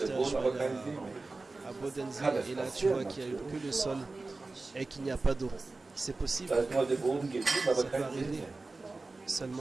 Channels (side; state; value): left; quieter; 3.5 dB